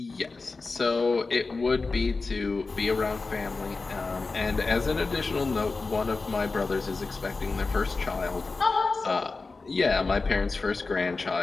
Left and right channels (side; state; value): right; quieter; 3.9 dB